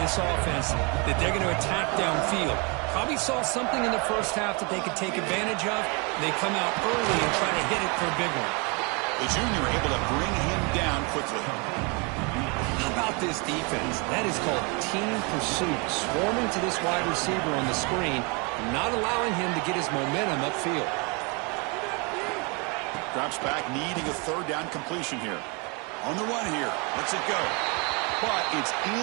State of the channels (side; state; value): left; quieter; 31.6 dB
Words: offense that they're going to attack downfield. Probably saw something in the first half that they could take advantage of. They come out early and try to hit it for a big one. The junior able to bring him down quickly. How about this defense? That is called team pursuit. Swarming to this wide receiver on the screen, not allowing him to get his momentum upfield. Drops back, needing a third down completion here. On the run here. Lets it go. But it's